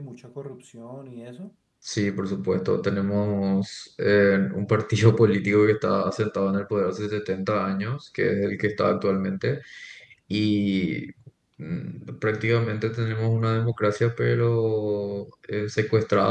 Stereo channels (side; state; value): both; identical; correlation 1.00